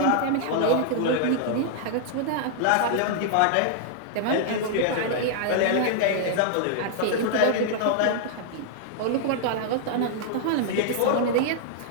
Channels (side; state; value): both; different; correlation -0.01